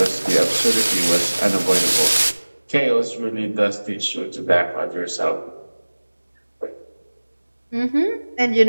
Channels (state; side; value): inverted; both; correlation -1.00